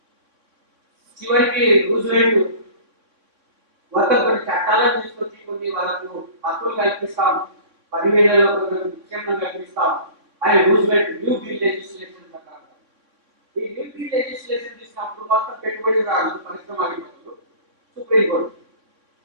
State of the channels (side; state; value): left; late; 3.6 ms